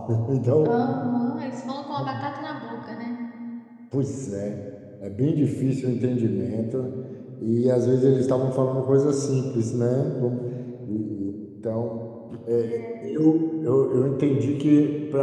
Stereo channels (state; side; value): identical; both; correlation 1.00